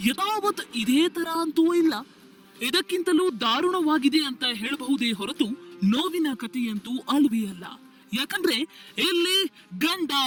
ಯಥಾವತ್ ಇದೇ ತರ ಅಂತೂ ಇಲ್ಲ, ಇದಕ್ಕಿಂತಲೂ ದಾರುಣವಾಗಿದೆ ಅಂತ ಹೇಳಬಹುದೇ ಹೊರತು ನೋವಿನ ಕಥೆಯಂತೂ ಅಲ್ವೇ ಅಲ್ಲ. ಯಾಕಂದ್ರೆ ಇಲ್ಲಿ ಗಂಡ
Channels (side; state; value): both; identical; correlation 1.00